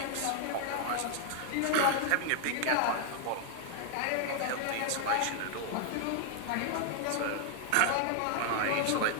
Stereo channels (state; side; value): different; both; correlation 0.00